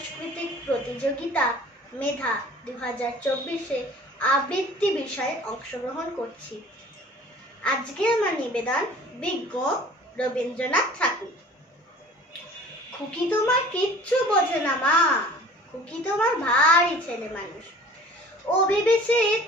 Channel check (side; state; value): both; normal; correlation 0.47